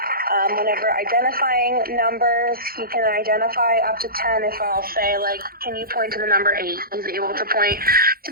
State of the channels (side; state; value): left; late; 0.43 ms